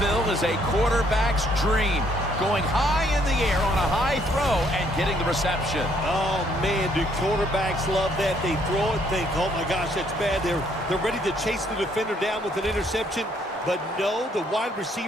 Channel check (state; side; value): normal; both; correlation 0.67